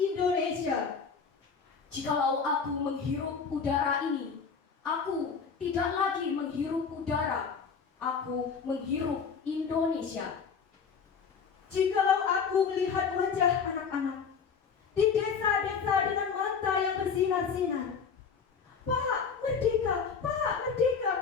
Jikalau aku menghirup udara ini, aku tidak lagi menghirup udara, aku menghirup Indonesia. Jikalau aku melihat wajah anak-anak di desa-desa dengan mata yang bersinar-sinar, Pak Merdeka, Pak Merdeka,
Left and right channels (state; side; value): quieter; right; 6.0 dB